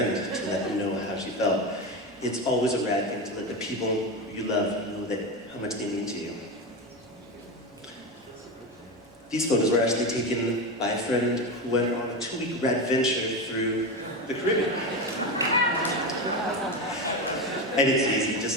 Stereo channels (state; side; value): normal; both; correlation 0.18